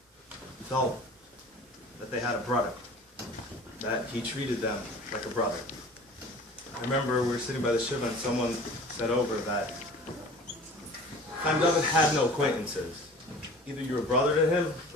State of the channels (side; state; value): both; normal; correlation 0.43